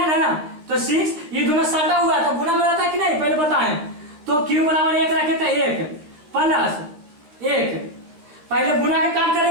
ना, तो 6 ये दोनों सटा हुआ तो गुना में रहता है कि नहीं, पहले बताएं। तो Q बराबर 1 रखे थे, 1 + 1, पहले गुना के काम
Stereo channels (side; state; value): left; late; 13 ms